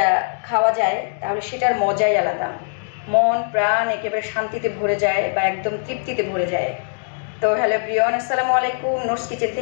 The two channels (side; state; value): right; silent; digital silence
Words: খাওয়া যায়, তাহলে সেটার মজাই আলাদা। মন প্রাণ একেবারে শান্তিতে ভরে যায় বা একদম তৃপ্তিতে ভরে যায়। তো হ্যালো প্রিয়ন, আসসালামু আলাইকুম। নোটস কিচেন